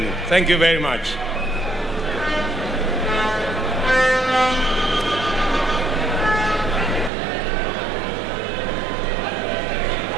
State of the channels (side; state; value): left; drops out; at 7.1 s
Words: Thank you very much.